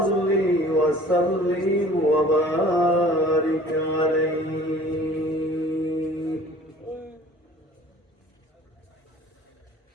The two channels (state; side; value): normal; both; correlation 0.49